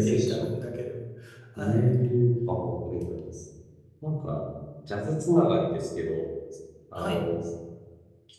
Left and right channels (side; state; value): both; identical; correlation 1.00